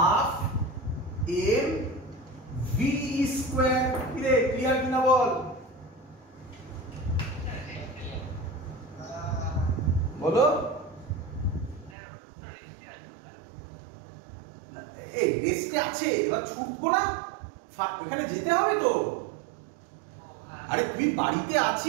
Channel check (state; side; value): drops out; left; at 12.0 s